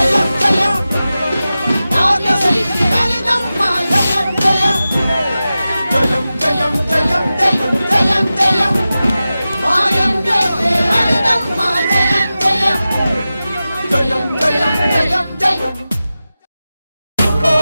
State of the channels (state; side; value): inverted; both; correlation -0.94